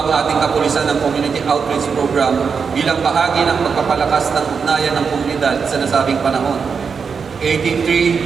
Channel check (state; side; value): quieter; left; 5.8 dB